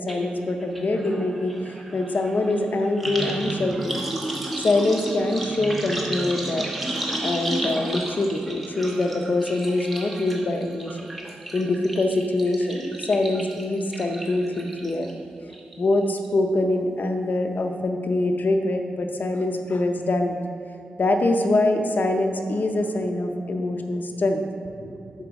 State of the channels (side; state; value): both; normal; correlation 0.87